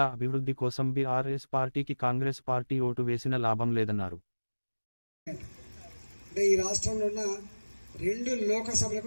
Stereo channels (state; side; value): inverted; both; correlation -1.00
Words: అభివృద్ధి కోసం బీఆర్ఎస్ పార్టీకి కాంగ్రెస్ పార్టీ ఓటు వేసిన లాభం లేదన్నారు. ఈ రాష్ట్రంలో ఉన్న 2